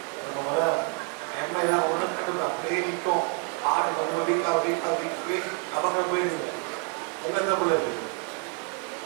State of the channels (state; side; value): quieter; left; 34.4 dB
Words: நம்ம எம்ஐ தான் ஒன்றும் கண்டுபிடிக்க அப்படியே நிற்கும். ஹார்ட் கொஞ்சம் வீக் நமக்கு போயிடுங்க. உங்க எந்த பிள்ளை இருக்கு?